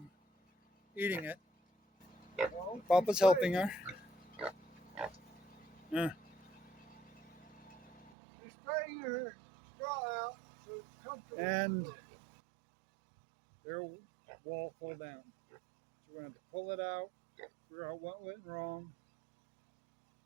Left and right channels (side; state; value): left; drops out; at 8.1 s